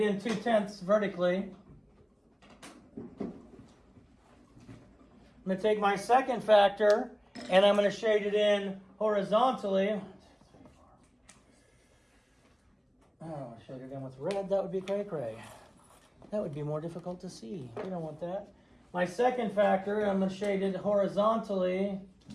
2 tenths vertically. I'm going to take my second factor and I'm going to shade it in horizontally. Oh, shade it in with red. That would be cray-cray. That would be more difficult to see. We don't want that. My second factor, I'm going to shade it horizontally.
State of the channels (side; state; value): both; identical; correlation 1.00